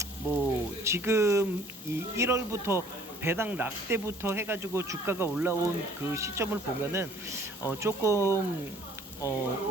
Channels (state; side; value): normal; both; correlation 0.56